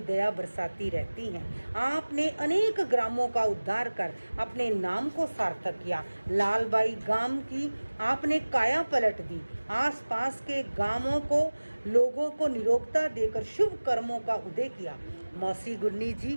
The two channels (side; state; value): both; inverted; correlation -1.00